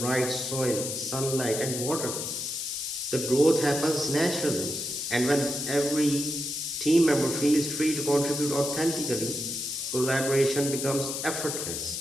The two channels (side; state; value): left; noise; hiss, 4 dB below the sound